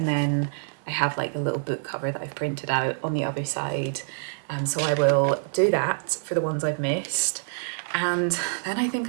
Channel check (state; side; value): silent; left; digital silence